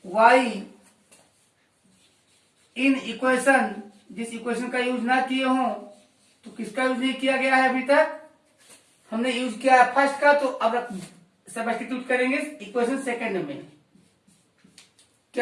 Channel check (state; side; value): identical; both; correlation 1.00